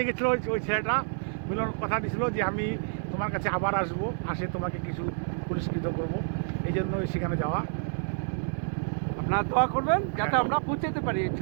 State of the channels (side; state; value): left; silent; 56 dB below the other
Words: গেছিল ওই ছেলেটা। মিলন কথা দিয়েছিল যে আমি তোমার কাছে আবার আসবো, আসে তোমাকে কিছু পুরস্কৃত করব, এই জন্য সেখানে যাওয়া। আপনারা দোয়া করবেন যাতে আমরা পৌঁছাতে পারি এই